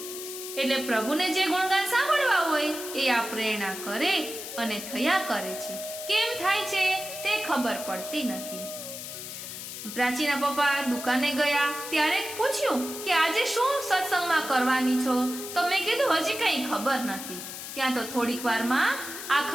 એટલે પ્રભુને જે ગુણગાન સાંભળવા હોય એ આ પ્રેરણા કરે અને થયા કરે છે. કેમ થાય છે તે ખબર પડતી નથી. પ્રાચીના પપ્પા દુકાને ગયા ત્યારે પૂછ્યું કે આજે શું સત્સંગમાં કરવાની છો? તો મેં કીધું હજી કઈ ખબર નથી. ત્યાં તો થોડીક વારમાં આ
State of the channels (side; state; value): left; noise; hiss, 9 dB below the sound